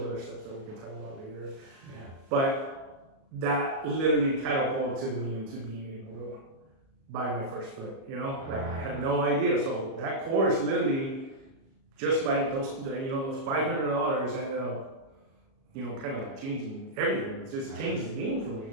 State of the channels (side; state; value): left; late; 37 ms